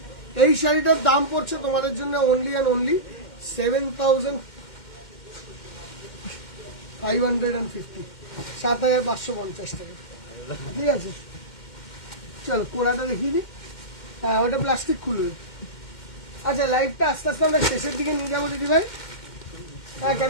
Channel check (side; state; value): right; late; 2.1 ms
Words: এই শাড়িটার দাম পড়ছে তোমাদের জন্য অনলি অ্যান্ড অনলি 7550, 7550 টাকা। ঠিক আছে, চলো কোড়াটা দেখিয়ে দিই। হ্যাঁ, ওটা প্লাস্টিক খুলবে। আচ্ছা, লাইভটা আস্তে আস্তে আমরা শেষের দিকে নিয়ে যাবো দিদি ভাই। হ্যাঁ,